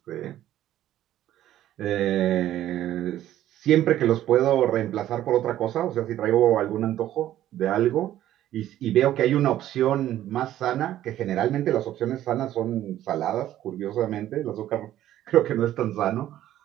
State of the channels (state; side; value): quieter; left; 12.8 dB